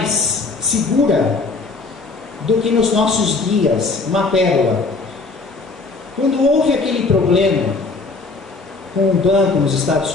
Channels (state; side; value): quieter; right; 3.9 dB